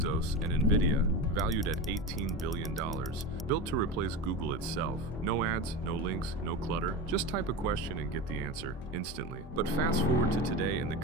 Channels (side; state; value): both; normal; correlation 0.24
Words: and NVIDIA, valued at $18 billion, built to replace Google itself. No ads, no links, no clutter. Just type a question and get the answer instantly. But fast forward to today and the